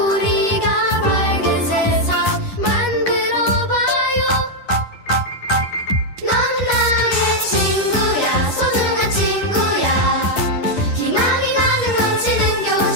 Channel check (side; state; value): right; late; 10 ms